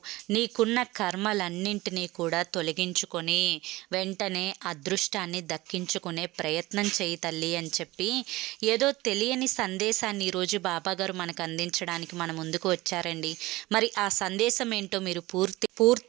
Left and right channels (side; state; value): left; quieter; 19.6 dB